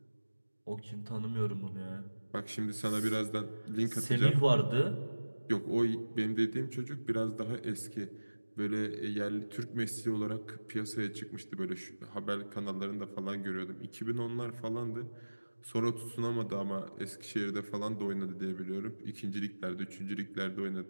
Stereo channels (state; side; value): inverted; both; correlation -1.00